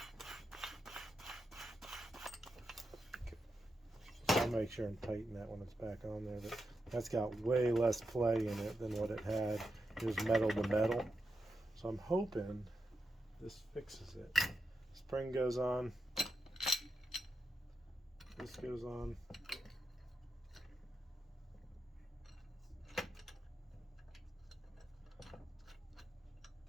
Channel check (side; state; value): both; normal; correlation 0.87